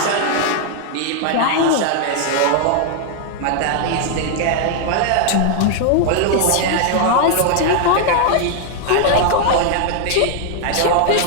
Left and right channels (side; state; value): both; different; correlation 0.00